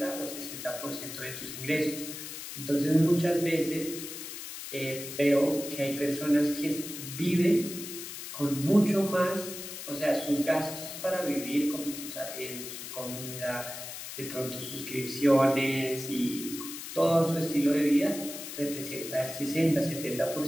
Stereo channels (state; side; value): noise; left; hiss, 9 dB below the sound